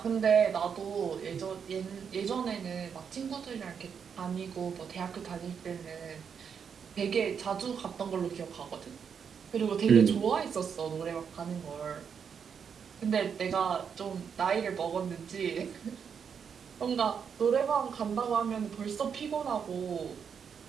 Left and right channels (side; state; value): left; quieter; 7.0 dB